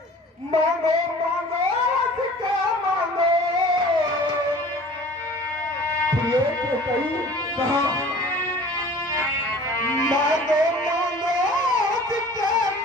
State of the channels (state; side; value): normal; both; correlation 0.45